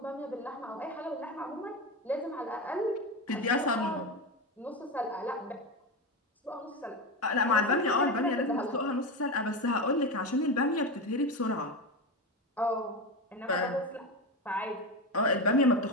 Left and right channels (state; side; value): normal; both; correlation 0.18